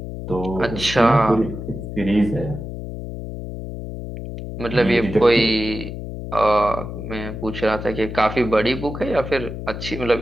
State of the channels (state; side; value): noise; left; hum, 8 dB below the sound